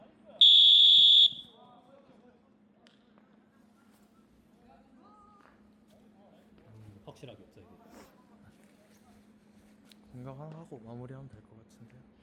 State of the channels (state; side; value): identical; both; correlation 1.00